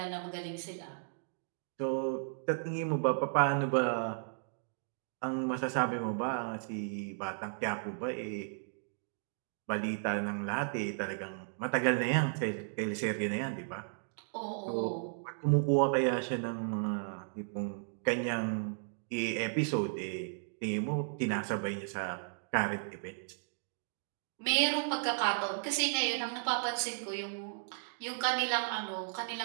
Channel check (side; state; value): left; silent; digital silence